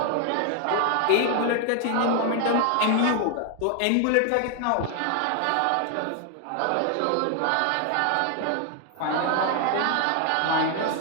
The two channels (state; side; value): different; both; correlation 0.00